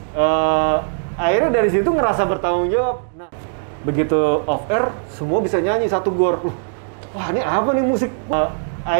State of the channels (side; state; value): left; silent; digital silence